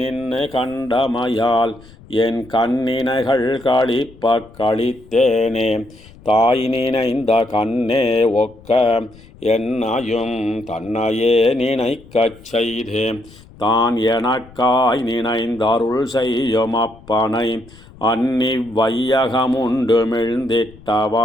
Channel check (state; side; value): noise; left; rumble, 23 dB below the sound